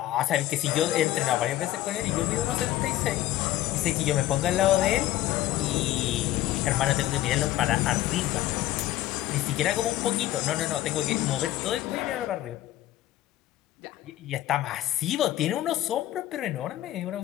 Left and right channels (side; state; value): right; quieter; 14.5 dB